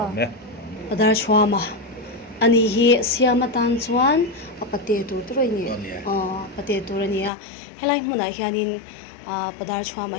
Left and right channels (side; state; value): right; drops out; at 7.3 s